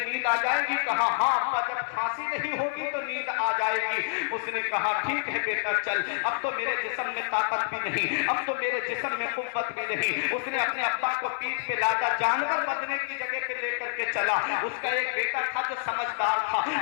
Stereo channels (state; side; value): silent; right; 59 dB below the other